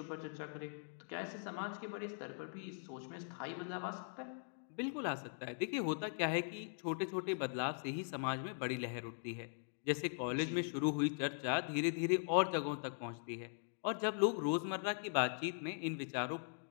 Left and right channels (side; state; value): right; silent; digital silence